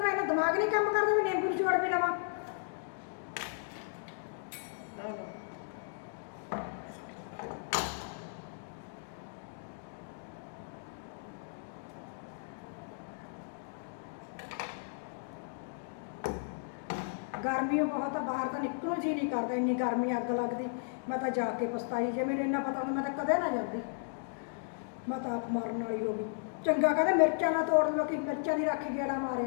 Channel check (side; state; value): right; silent; digital silence